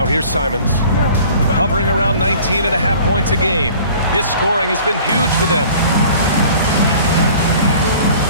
here's Simons, hovering around 19.5 points a game. His scoring has been huge for them.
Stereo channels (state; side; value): inverted; both; correlation -0.48